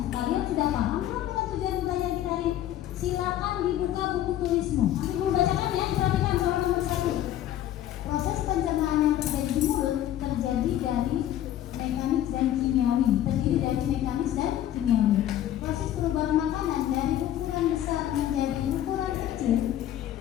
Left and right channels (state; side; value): quieter; right; 12.2 dB